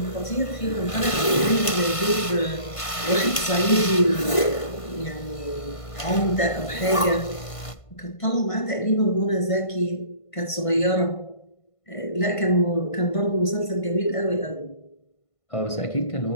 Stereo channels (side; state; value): right; late; 1.5 ms